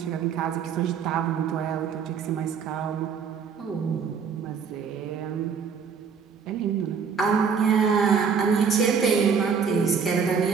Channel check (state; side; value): quieter; left; 6.3 dB